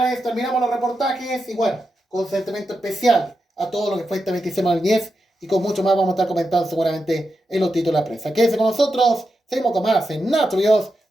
terminamos los reportajes y bueno, con sentimiento especial a todo lo que fue este 26 de 2010 y con mucho más vamos a estar comentando seguramente en los títulos de la prensa. Quédense con nosotros, seguimos con más en Nacho Videos,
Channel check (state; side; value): normal; both; correlation 0.87